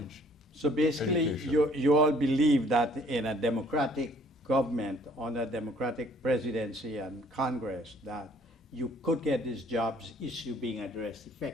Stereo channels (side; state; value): both; normal; correlation 0.59